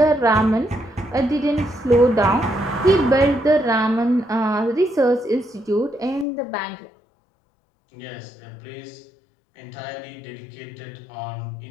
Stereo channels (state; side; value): drops out; right; at 6.2 s